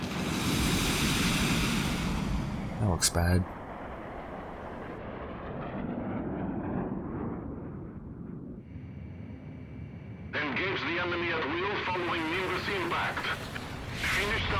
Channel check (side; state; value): both; identical; correlation 1.00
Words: That looks bad. Engage the enemy at will following Nimbus impact. Finish